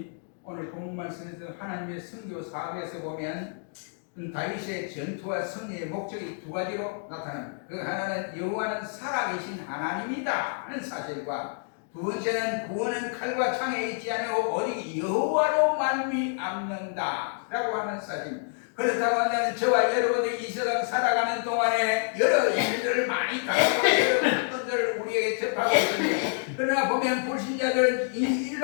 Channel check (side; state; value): right; silent; 57 dB below the other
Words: 오늘 본문 말씀에서 하나님의 선교 사업에서 보면 다윗의 전투와 승리의 목적이 2가지로 나타납니다. 그 하나는 여호와는 살아계신 하나님이다 하는 사실과 두 번째는 구원은 칼과 창에 있지 않고 오직 여호와로 말미암는다 라고 하는 사실입니다. 그렇다고 한다면 저와 여러분들이 이 세상 살아가는 동안에 여러 일들을 많이 당하고 여러 것들을 우리에게 접하고 있습니다. 그러나 보면 불신자들은